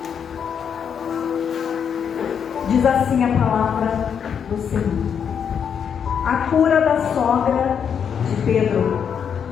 Diz assim a palavra do Senhor. A cura da sogra de Pedro.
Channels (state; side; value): quieter; right; 7.5 dB